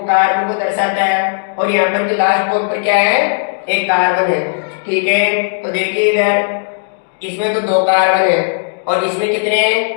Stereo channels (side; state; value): right; silent; digital silence